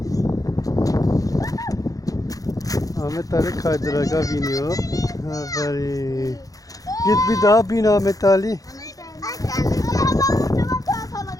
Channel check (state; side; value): late; right; 0.17 ms